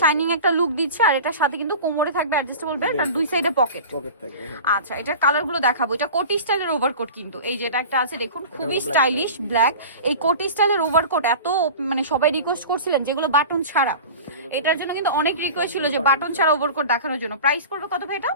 একটা লুক দিচ্ছে। আর এটার সাথে কিন্তু কোমরে থাকবে অ্যাডজাস্টেবল বেল্ট, আর দুই সাইডে পকেট থাকবে। আচ্ছা, এটার কালার গুলো দেখাবো। এটা কোটি স্টাইলের ওভারকোট, কিন্তু এই যেটা একটা আছে দেখুন, খুবই স্টাইলিশ ব্ল্যাক। এই কোটি স্টাইলের ওভারকোট এত মানে সবাই রিকোয়েস্ট করছিলেন যেগুলো বাটন ছাড়া, এটার জন্য কিন্তু অনেক রিকোয়েস্ট ছিল যে বাটন ছাড়া ওভারকোট দেখানোর জন্য। প্রাইস পড়বে কত ভাই এটা?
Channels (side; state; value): both; inverted; correlation -0.36